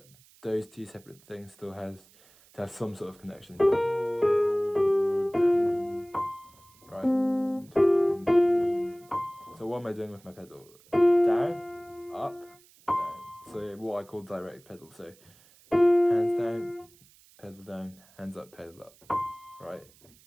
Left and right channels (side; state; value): right; noise; hiss, 28 dB below the sound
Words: those two separate things still have some sort of connection. Right? So what am I doing with my pedal? Down, up, down. So what I call direct pedal. So hands down, pedal down, hands up, pedal up. Right?